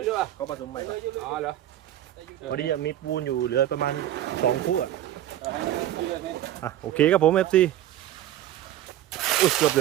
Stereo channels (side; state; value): left; quieter; 12.6 dB